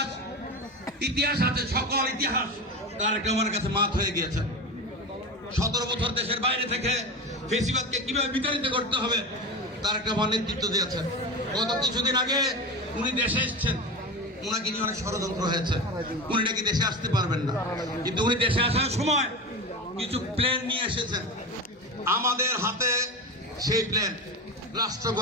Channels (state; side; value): normal; both; correlation 0.24